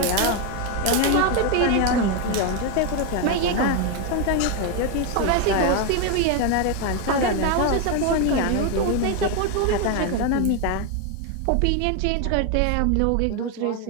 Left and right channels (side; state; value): both; different; correlation 0.01